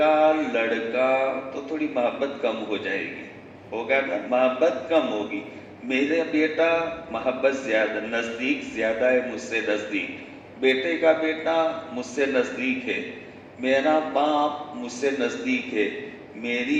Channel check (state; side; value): identical; both; correlation 1.00